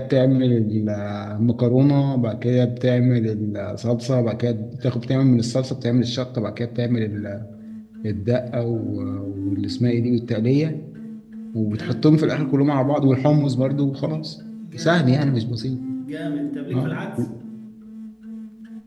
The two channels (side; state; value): both; identical; correlation 1.00